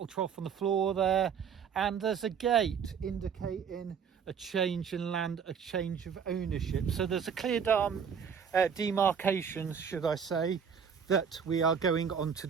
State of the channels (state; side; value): quieter; left; 7.0 dB